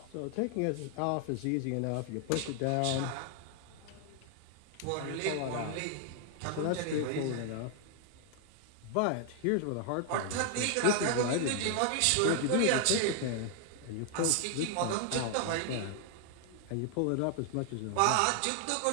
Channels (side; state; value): both; different; correlation 0.00